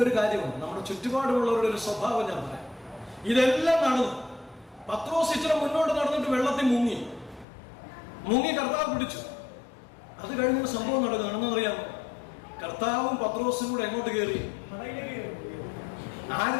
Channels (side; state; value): right; drops out; at 7.5 s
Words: ഒരു കാര്യമുണ്ട്, നമ്മുടെ ചുറ്റുപാടുമുള്ളവരുടെ ഒരു സ്വഭാവം ഞാൻ പറയാം. ഇതെല്ലാം നടന്നു. പത്രോസ് ഇച്ചിരി മുന്നോട്ട് നടന്നിട്ട് വെള്ളത്തിൽ മുങ്ങി കർത്താവ് പിടിച്ചു. അത് കഴിഞ്ഞൊരു സംഭവം നടന്നു. അറിയാമോ? കർത്താവും പത്രോസും കൂടെ എങ്ങോട്ട് കയറി?